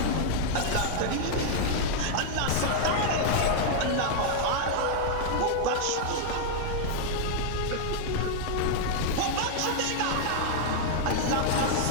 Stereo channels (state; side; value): different; both; correlation -0.01